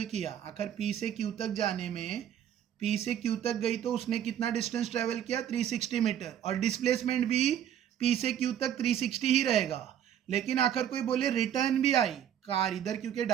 किया. आखिर पी से क्यू तक जाने में, पी से क्यू तक गई तो उसने कितना डिस्टेंस ट्रैवल किया 360 मीटर. और डिस्प्लेसमेंट भी पी से क्यू तक 360 ही रहेगा. लेकिन आखिर कोई बोले रिटर्न भी आई कार इधर, क्योंकि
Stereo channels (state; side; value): quieter; left; 10.0 dB